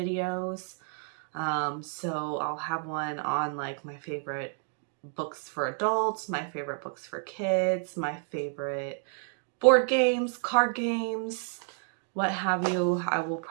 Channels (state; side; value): silent; left; 58 dB below the other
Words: So I'll have one on like my favorite books for adults, my favorite books for kids, my favorite board games, card games, what have you. I will